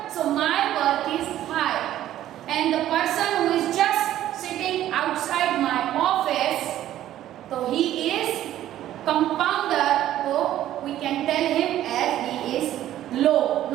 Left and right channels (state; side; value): quieter; left; 12.8 dB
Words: so my work is high, and the person who is just sitting outside my office, so he is compounder, so we can tell him as he is low.